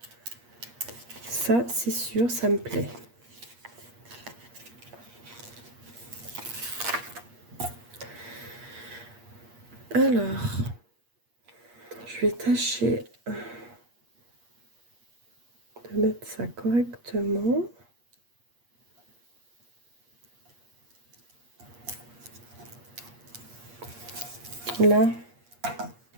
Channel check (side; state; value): left; late; 8.5 ms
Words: Ça, c'est sûr, ça me plaît. Alors, je vais tâcher de mettre ça correctement. Là.